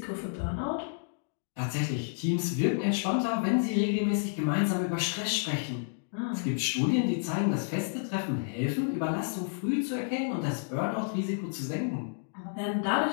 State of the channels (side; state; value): right; silent; digital silence